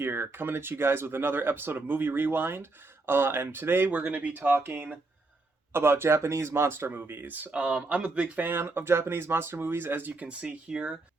coming at you guys with another episode of Movie Rewind. And today we're going to be talking about Japanese monster movies. I'm a big fan of Japanese monster movies, as you can see here,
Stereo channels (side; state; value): left; quieter; 3.3 dB